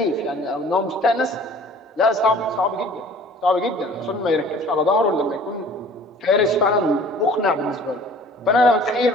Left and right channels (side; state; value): both; normal; correlation 0.49